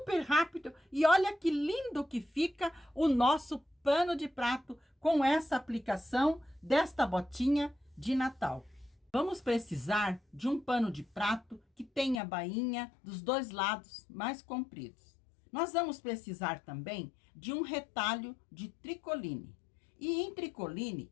rápido e olha que lindo que fica o nosso pano de prato com essa aplicação desta botinha de Natal. Vamos precisar de um pano de prato que tenha a bainha dos dois lados mais compridos. Nós vamos precisar também de um retalho de tricoline. E em tricoline,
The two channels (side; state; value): right; drops out; at 12.2 s